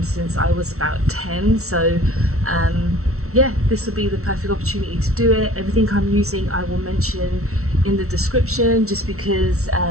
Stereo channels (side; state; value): left; late; 0.63 ms